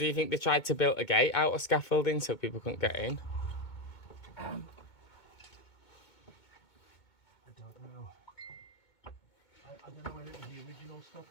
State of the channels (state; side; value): late; right; 2.2 ms